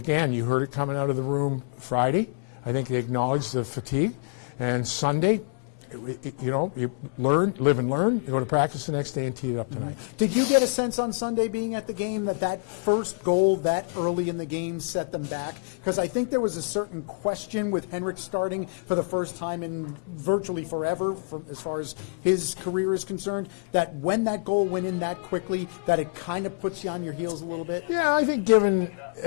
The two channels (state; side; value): quieter; right; 38.8 dB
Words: you heard it coming out of the room Friday. I think they acknowledged the fatigue, and Sunday, you learn, live and learn. You go to practice the next day and tee it up tonight. Did you get a sense on Sunday being at the game that first goal that early in the game set them back? Because I think there was a certain question with Henrik starting for the first time in virtually forever, as far as his career is concerned, that when that goal went in that quickly, that it kind of puts you on your heels a little bit? Yeah, I think given